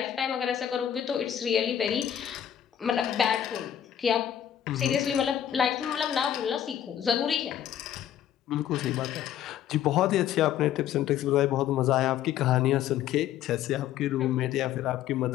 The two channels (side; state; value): right; quieter; 10.4 dB